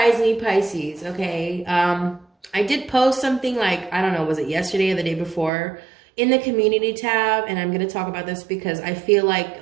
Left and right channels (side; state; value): left; drops out; at 5.5 s